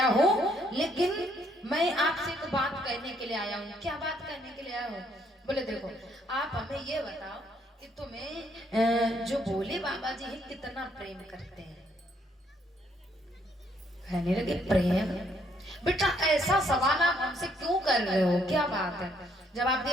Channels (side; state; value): both; normal; correlation 0.69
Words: हूँ, लेकिन मैं आपसे एक बात कहने के लिए आया हूँ। क्या बात कहने के लिए आया हूँ? बोले देखो आप हमें ये बताओ कि तुम्हें जो भोले बाबा जी हैं कितना प्रेम करते हैं? कहने लगे प्रेम? बेटा ऐसा सवाल आप हमसे क्यों कर रहे हो, क्या बात है? जवाब